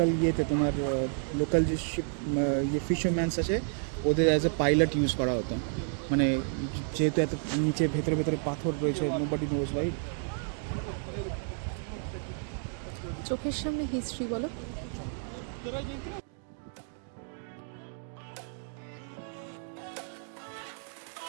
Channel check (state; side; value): silent; left; 57 dB below the other